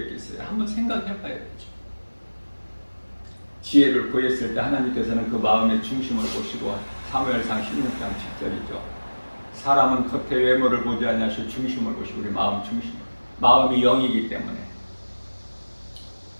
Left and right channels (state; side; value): inverted; both; correlation -1.00